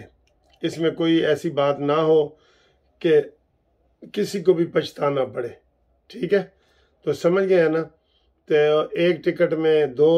इसमें कोई ऐसी बात ना हो कि किसी को भी पछताना पड़े, ठीक है? तो समझ गए हैं ना? तो एक टिकट में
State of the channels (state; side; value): identical; both; correlation 1.00